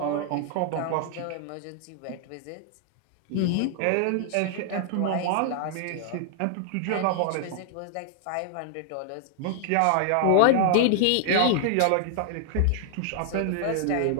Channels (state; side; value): different; both; correlation 0.00